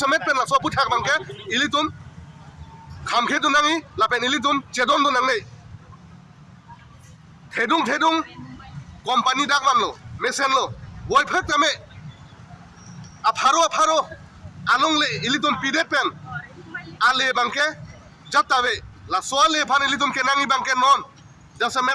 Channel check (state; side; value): identical; both; correlation 1.00